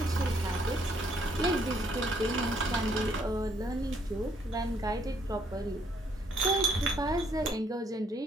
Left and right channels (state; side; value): normal; both; correlation 0.68